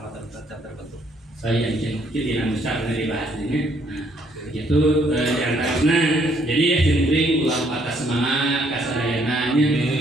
tertentu saya yang tidak besar dari bahas ini itu diantaranya jadi ya penting ulang patah semangat kasarananya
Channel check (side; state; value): both; normal; correlation 0.68